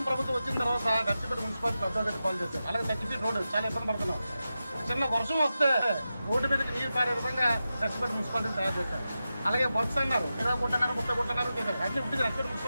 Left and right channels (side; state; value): both; inverted; correlation -0.92